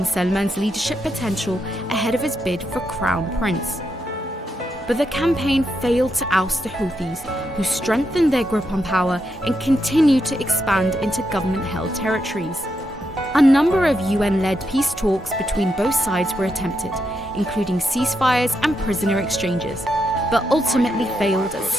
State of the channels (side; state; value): both; normal; correlation 0.82